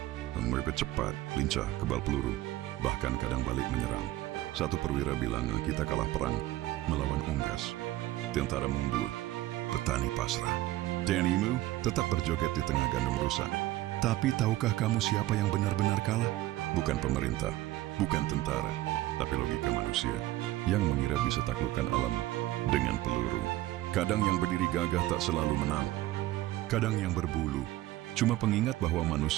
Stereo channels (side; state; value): left; quieter; 16.0 dB